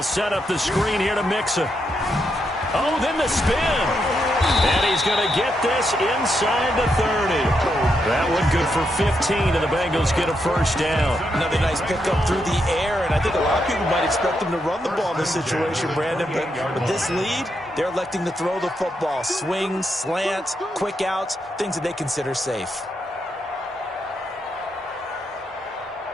set up the screen here to Mixon. Oh, then the spin. And he's going to get this inside the 30. That one good for 15, and the Bengals get a first down. Another nice pickup through the air, and I think a lot of people might expect them to run the ball in this situation, Brandon. But with this lead, they're electing to throw the football. Swings, slants, quick outs, things that they consider safe.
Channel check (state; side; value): normal; both; correlation 0.81